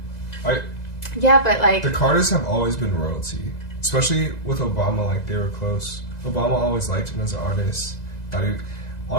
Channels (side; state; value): right; late; 2.0 ms